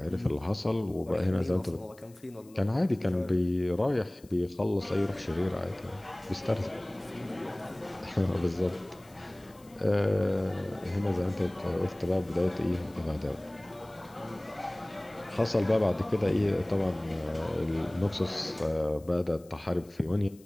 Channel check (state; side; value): noise; left; hiss, 27 dB below the sound